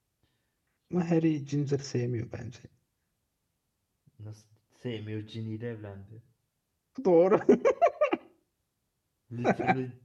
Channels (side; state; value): both; identical; correlation 1.00